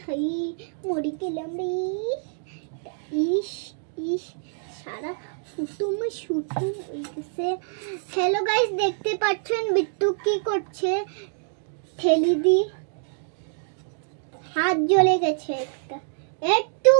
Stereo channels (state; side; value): silent; left; digital silence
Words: হাই মরি গেলাম রে। ইস ইস সারা ফুটুমে শুটুম হয়ে গেছে। হ্যালো গাইস, দেখতে পাচ্ছেন বিট্টু কি করছে, ঠেলি দি হাত জ্বলে গেছে, একটু